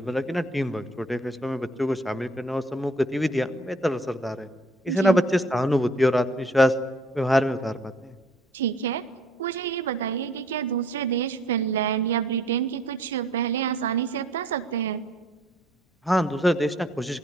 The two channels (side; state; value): both; normal; correlation 0.58